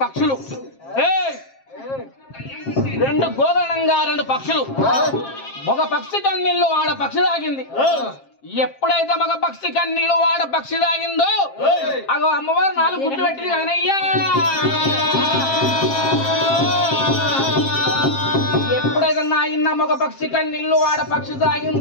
పక్షులు రెండు గోదరణంగా రెండు పక్షులు ఒక పక్షి కన్నీళ్ళు ఆడ పక్షి తాగింది ఎప్పుడైతే మగ పక్షి కన్నీళ్ళు వాడ పక్షి తాగిందో అగో అమ్మవారు 4 గుడ్లు పెట్టింది కదనయ్యా ఎప్పుడైతే నాయన్న మగ పక్షి కన్నీళ్ళు వాడ పక్షి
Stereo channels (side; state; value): right; late; 7.5 ms